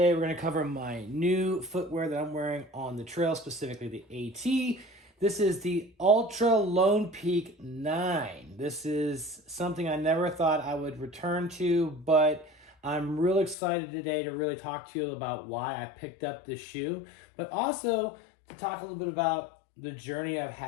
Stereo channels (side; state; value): right; drops out; at 13.6 s